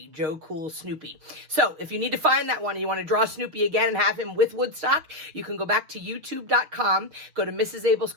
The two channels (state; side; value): late; left; 6.5 ms